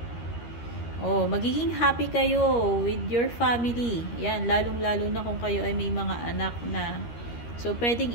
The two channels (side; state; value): right; late; 13 ms